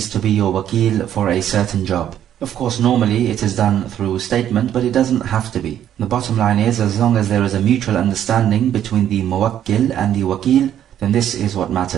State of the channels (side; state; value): left; quieter; 10.6 dB